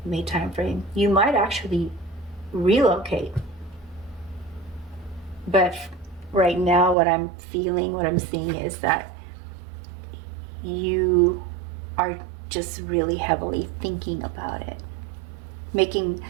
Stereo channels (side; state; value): left; drops out; at 7.0 s